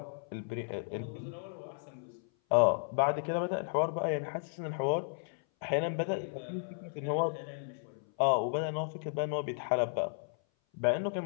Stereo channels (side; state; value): right; silent; 55 dB below the other